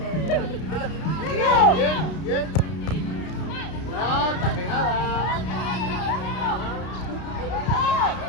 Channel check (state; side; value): late; right; 32 ms